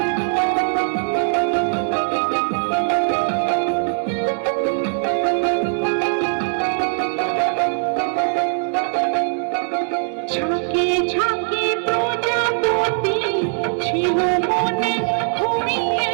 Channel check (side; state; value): left; silent; digital silence